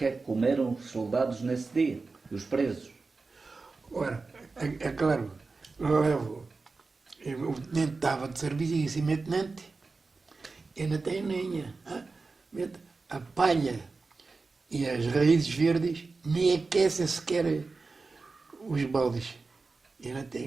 é que comeram os soldados nesse dia? Os presos? Ora, é claro, o tenente estava de serviço e disse, meu tenente, eu não tenho lenha. A palha e as raízes verdes nem aquecem sequer os baldes. Eu não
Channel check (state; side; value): quieter; left; 4.0 dB